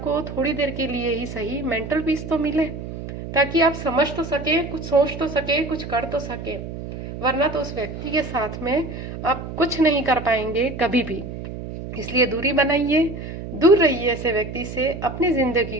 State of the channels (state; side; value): noise; right; hum, 9 dB below the sound